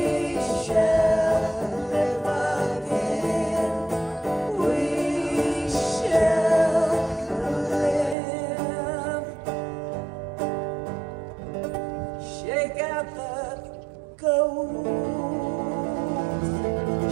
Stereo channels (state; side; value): drops out; left; at 8.2 s